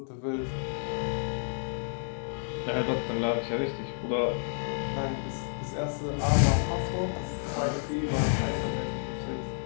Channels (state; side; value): silent; right; digital silence